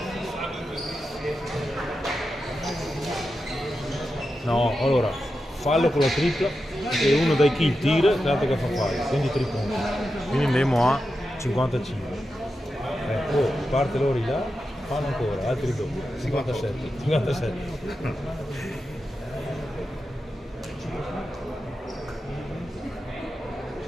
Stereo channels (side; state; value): both; normal; correlation 0.89